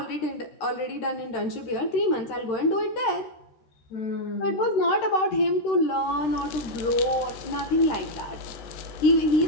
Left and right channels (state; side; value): late; right; 13 ms